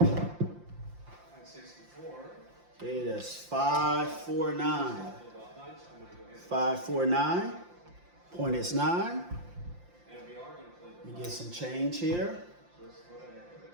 Okay, that's 549. 549. Point is 9. Let me get some change here.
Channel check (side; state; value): left; late; 5.7 ms